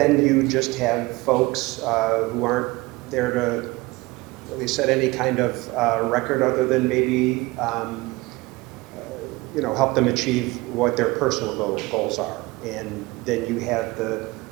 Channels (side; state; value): left; quieter; 22.2 dB